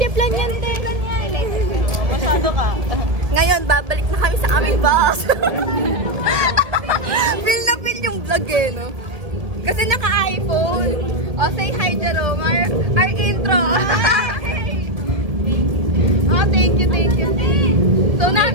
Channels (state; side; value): late; left; 1.7 ms